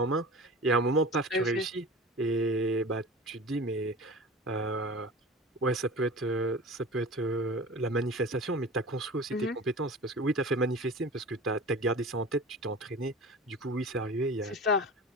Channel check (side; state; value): both; normal; correlation 0.35